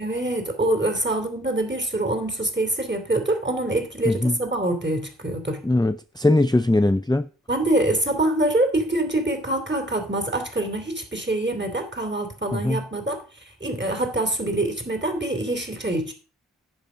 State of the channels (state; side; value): normal; both; correlation 0.59